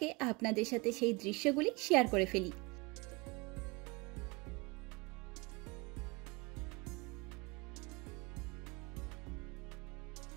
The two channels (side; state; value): left; quieter; 26.9 dB